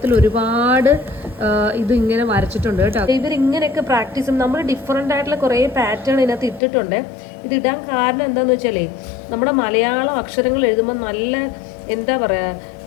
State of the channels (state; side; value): drops out; right; at 6.6 s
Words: ഒരുപാട് ഇത് ഇങ്ങനെ വരച്ചിട്ടുണ്ട് കേട്ടോ. ഇവരിങ്ങനെയൊക്കെ പ്രാക്ടീസ് ചെയ്യും. നമ്മൾ ഡിഫറെൻ്റ് ആയിട്ടുള്ള കുറേ പാറ്റേൺ ഇതിനകത്ത് ഇട്ടിട്ടുണ്ട്. ഇത് ഇടാൻ കാരണം എന്താണെന്ന് വെച്ചാലേ നമ്മുടെ മലയാളം അക്ഷരങ്ങൾ എഴുതുമ്പോൾ നല്ല എന്താ